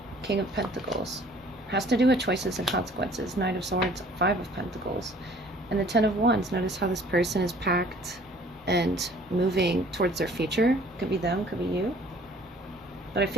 King of Pentacles has to do with choices and consequences. 9 of Swords, 5 of Pentacles, and the 10 of Wands. Notice how this person is packed and moving towards their future. Could be them, could be you. But I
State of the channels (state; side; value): normal; both; correlation 0.54